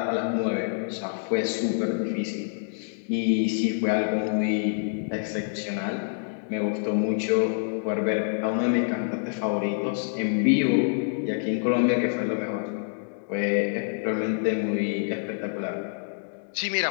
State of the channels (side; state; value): right; silent; digital silence